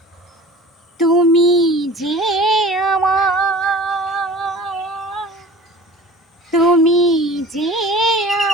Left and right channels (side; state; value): both; normal; correlation 0.42